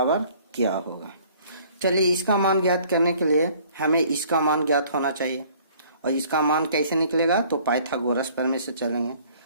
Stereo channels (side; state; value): both; inverted; correlation -0.56